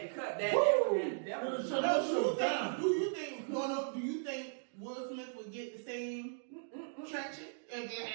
to cut that. Woo! That was No, do you think Will Smith would get the same traction if it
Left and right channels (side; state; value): left; silent; digital silence